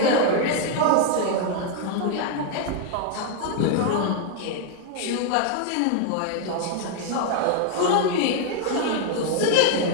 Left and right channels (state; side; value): different; both; correlation 0.00